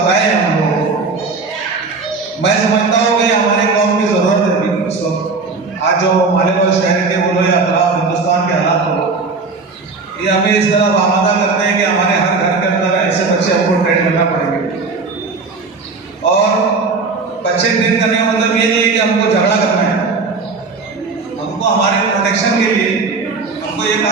हैं हम लोग, मैं समझता हूँ कि हमारे कौम की जरूरत है अभी इस वक्त। आज जो मालेगांव शहर के बोलो या हिंदुस्तान के हालात हो, ये हमें इस तरह आमादा करते हैं कि हमारे हर घर के अंदर ऐसे बच्चे हमको ट्रेन करना पड़ेंगे। और बच्चे ट्रेन करने का मतलब ये नहीं है कि हमको झगड़ा करना है। हमको हमारे प्रोटेक्शन के लिए हमको ये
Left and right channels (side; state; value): left; quieter; 4.2 dB